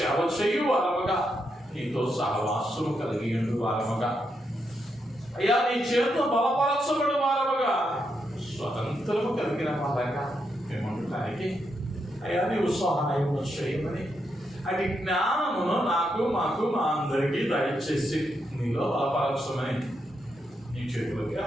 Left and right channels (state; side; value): normal; both; correlation 0.82